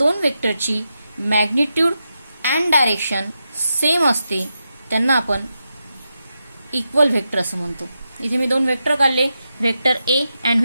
वेक्टरची मॅग्निट्यूड अँड डायरेक्शन सेम असते त्यांना आपण इक्वल व्हेक्टर असं म्हणतो. इथे मी दोन वेक्टर काढले, vector A and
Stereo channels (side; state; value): both; inverted; correlation -0.87